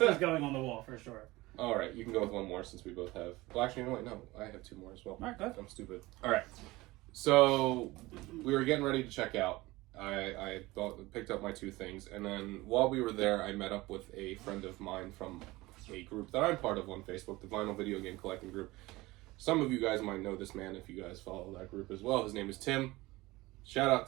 going on the wall for sure. All right, you can go with one more since we both have. Well, actually, no, I have two more as well. All right, go ahead. I'm stupid. All right, so we were getting ready to check out. I picked up my two things, and then while we were there, I met up with a friend of mine from a group that I'm part of on Facebook, the Vinyl Video Game Collecting Group. Some of you guys might know this man if you guys follow that group as well. His name is Tim. Shout out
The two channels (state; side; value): quieter; left; 20.1 dB